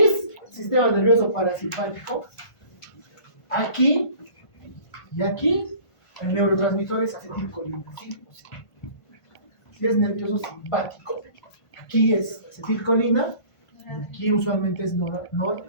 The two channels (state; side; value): late; right; 1.5 ms